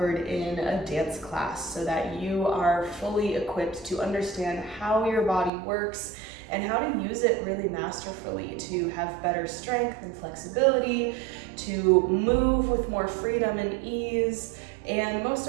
in a dance class, so that you are fully equipped to understand how your body works and how to use it really masterfully to have better strength and flexibility, to move with more freedom and ease, and most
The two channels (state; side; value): drops out; left; at 5.5 s